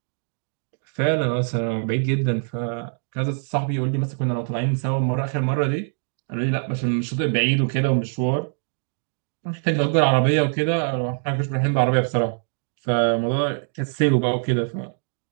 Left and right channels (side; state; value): left; silent; 58 dB below the other